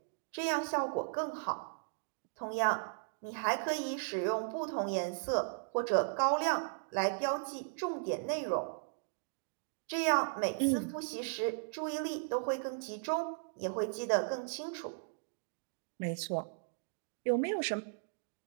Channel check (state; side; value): silent; left; digital silence